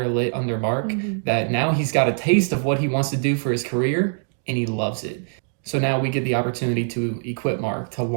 lit under Mark, that now he's got a taste of what he wants to do for his career, and he loves it. So now we get the opportunity to equip Mark, to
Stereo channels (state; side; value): silent; left; digital silence